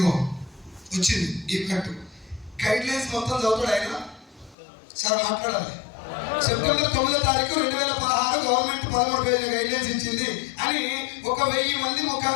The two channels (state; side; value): drops out; right; at 4.5 s